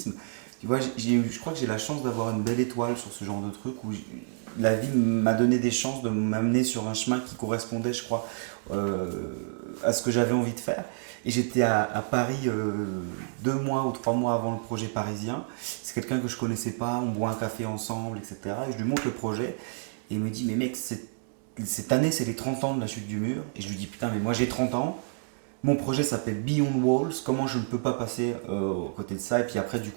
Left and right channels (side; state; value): left; silent; digital silence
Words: tu vois, je crois que j'ai la chance d'avoir une belle étoile sur ce genre de truc où la vie m'a donné des chances de m'amener sur un chemin qui correspondait, je crois, euh, à ce que j'avais envie de faire. Et j'étais à Paris 2 mois ou 3 mois avant le projet parisien. C'est quelqu'un que je connaissais pas, on boit un café ensemble, etc. Et je lui montre le projet et il me dit, mais mec, cette année c'est les 30 ans de la chute du mur. Et je lui dis, putain, mais moi j'ai 30 ans. Mon projet s'appelle Beyond Walls. Comment je ne peux pas passer aux côté de ça? Et puis après, du